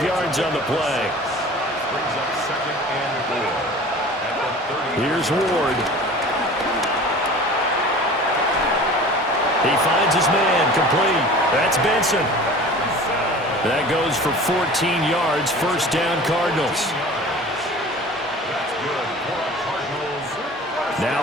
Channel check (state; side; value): normal; both; correlation 0.41